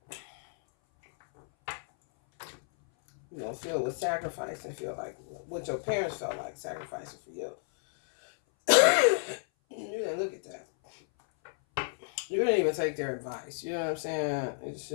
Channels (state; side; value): silent; right; 57 dB below the other